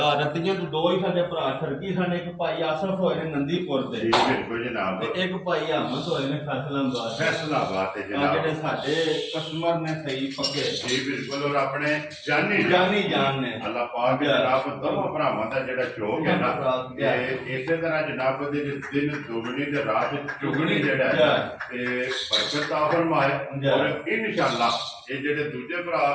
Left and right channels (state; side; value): identical; both; correlation 1.00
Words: ਰੱਤੀਆਂ ਤੋਂ ਦੋ ਹੀ ਸਾਡੇ ਭਰਾ ਠਰਕੀ ਸਨ, ਇੱਕ ਭਾਈ ਆਸਫ ਹੋਏ ਨੇ ਨੰਦੀਪੁਰ ਜੀ ਦੇ ਬਿਲਕੁਲ ਜਨਾਬ, ਤੇ ਇੱਕ ਭਾਈ ਅਹਿਮਦ ਹੋਏ ਨੇ ਫੈਸਲਾਬਾਦ। ਫੈਸਲਾਬਾਦ ਤੇ ਜਿਹੜੇ ਜਨਾਬ ਸਾਡੇ ਕਸਟਮਰ ਨੇ ਸਹੀ ਪੱਕੇ ਜੀ ਬਿਲਕੁਲ, ਔਰ ਆਪਣੇ ਜਾਨੀ ਜਾਨ ਨੇ। ਅੱਲਾਹ ਪਾਕ ਜਨਾਬ ਦੋਵਾਂ ਭਰਾਵਾਂ ਦਾ ਜਿਹੜਾ ਸ਼ੌਕ ਹੈ ਨਾ, ਭਰਾ ਤੇ ਇਸੇ ਤਰ੍ਹਾਂ ਜਨਾਬ ਦੇ ਦਿਨ ਦੁਗਣੀ ਤੇ ਰਾਤ ਚੁਗਣੀ ਜਿਹੜਾ ਹੈ ਤੇ ਬਰਕਤ ਆ ਫਰਮਾਏ। ਔਰ ਇਨਸ਼ਾਅੱਲਾ ਇਹ ਜਿਹੜੇ ਦੂਜੇ